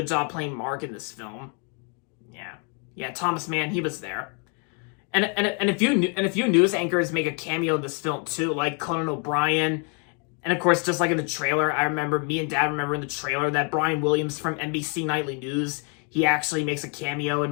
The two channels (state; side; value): quieter; right; 37.4 dB